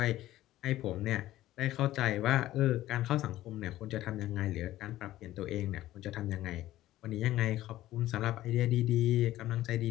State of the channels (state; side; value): quieter; right; 14.8 dB